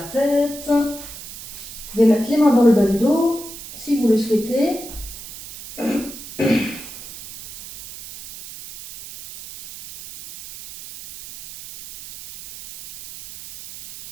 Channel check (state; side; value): noise; right; hiss, 13 dB below the sound